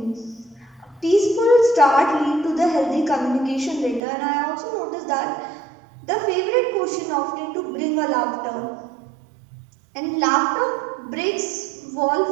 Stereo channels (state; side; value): drops out; left; at 4.0 s